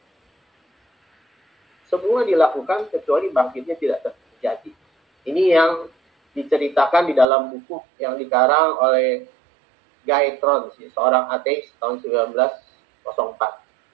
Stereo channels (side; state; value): left; drops out; at 7.2 s